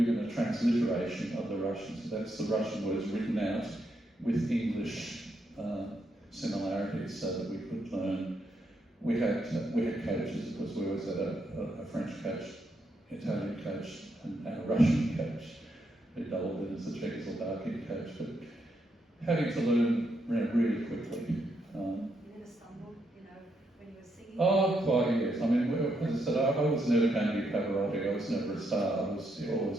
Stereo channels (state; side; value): normal; both; correlation 0.79